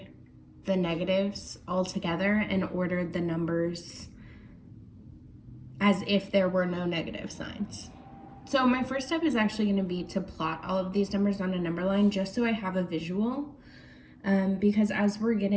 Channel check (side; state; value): both; identical; correlation 1.00